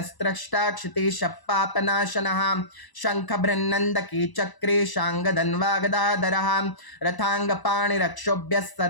क्षितिशपापनाशनः शङ्ख बृहन्नन्दकी चक्रे शाङ्गधन्वागदाधरः रथाङ्गपाणिरक्षोभ्यः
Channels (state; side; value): late; right; 1.0 ms